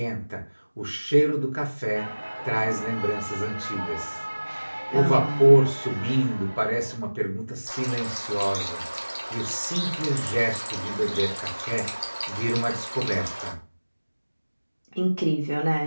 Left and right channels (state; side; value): inverted; both; correlation -1.00